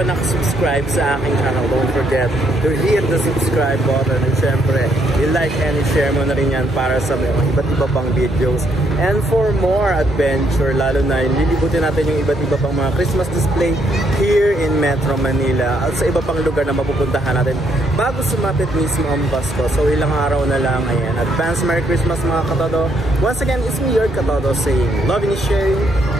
nakasubscribe sa aking channel, don't forget to hit the subscribe button. And syempre, i-like and i-share mo na rin yan para sa mga iba't iba pang videos. And for more adventure, lalo na lilibutin natin yung iba't iba pang mga Christmas display here in Metro Manila at sa iba pang lugar na mapupuntahan natin bago sumapit mismo ang Pasko. So ilang araw na lang. Ayan, advance Merry Christmas mga katodo. Once again, it's me, your katodo, saying love and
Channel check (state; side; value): normal; both; correlation 0.73